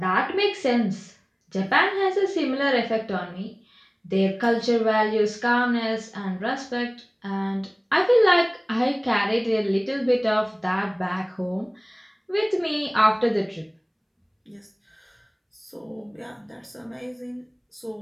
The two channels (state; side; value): identical; both; correlation 1.00